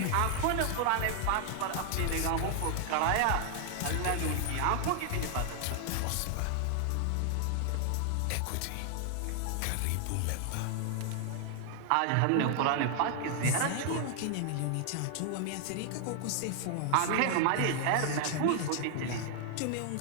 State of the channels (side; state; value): both; different; correlation 0.00